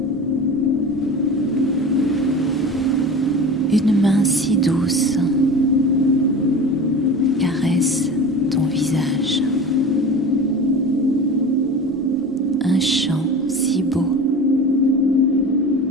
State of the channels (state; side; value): normal; both; correlation 0.34